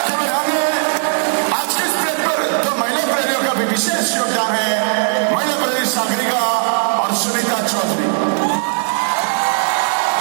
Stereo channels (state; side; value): silent; left; 68 dB below the other